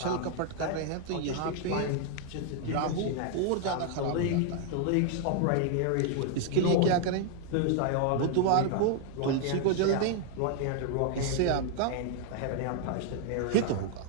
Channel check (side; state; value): both; different; correlation 0.00